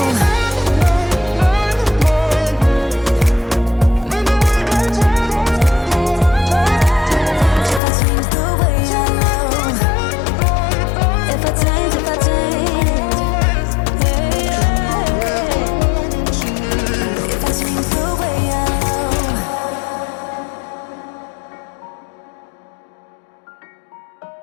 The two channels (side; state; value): right; drops out; at 7.8 s